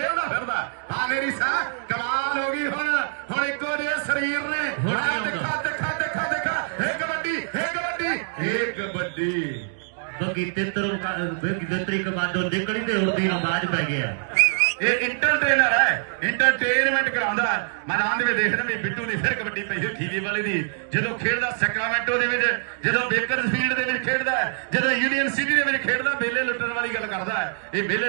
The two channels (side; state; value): left; silent; digital silence